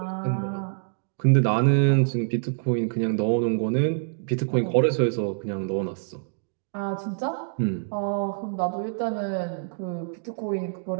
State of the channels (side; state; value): left; silent; digital silence